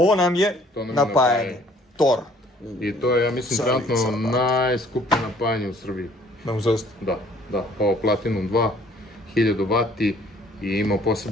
nam je napajanje. Tor. I to je, ja mislim, trenutno najskuplje napajanje u Srbiji. Da, ovo Platinum 2, 1000 W i ima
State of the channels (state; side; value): normal; both; correlation 0.58